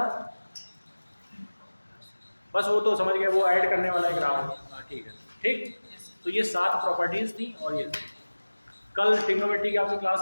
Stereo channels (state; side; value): inverted; both; correlation -1.00